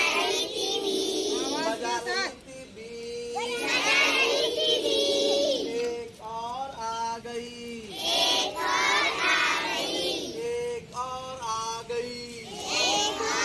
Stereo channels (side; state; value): both; identical; correlation 1.00